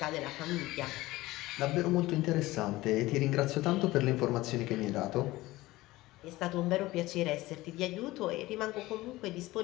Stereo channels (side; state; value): right; quieter; 18.6 dB